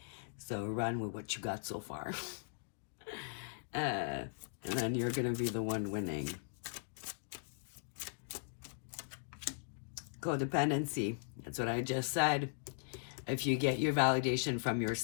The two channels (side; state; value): right; silent; digital silence